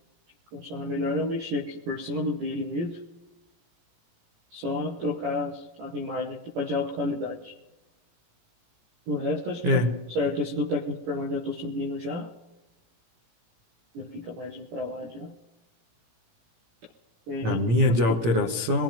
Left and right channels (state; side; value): late; left; 18 ms